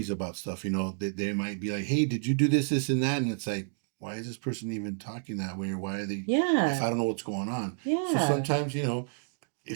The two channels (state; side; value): silent; left; digital silence